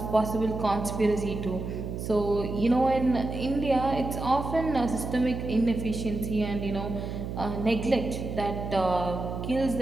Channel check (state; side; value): noise; right; hum, 6 dB below the sound